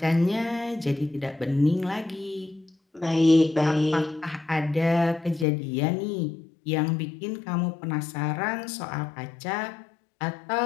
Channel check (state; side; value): drops out; right; at 5.5 s